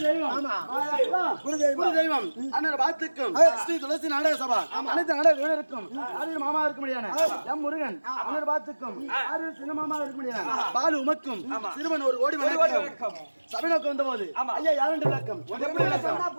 தெய்வம், குரு தெய்வம் அண்ணன் பாத்துக்கும் ஸ்ரீ துளசி நாடக சபா அனைத்து நாடக வீரருக்கும் மாமா இருக்க முடியாது. எம் முருகன் அண்ணன் பாத்துக்கும் சின்ன மாமா இருக்க முடியாது. பாலு உமக்கும் சிறுவன் ஒரு கோடி வணக்கம். சபை நோக்கம் வந்த போது ஐயா யாருன்ற விளக்கம் எப்படி விளக்கம்?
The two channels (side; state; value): both; inverted; correlation -1.00